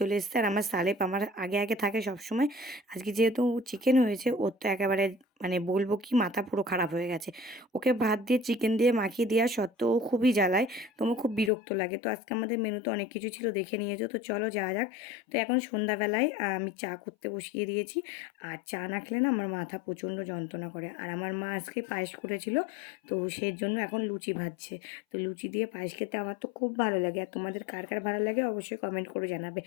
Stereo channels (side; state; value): right; drops out; at 11.5 s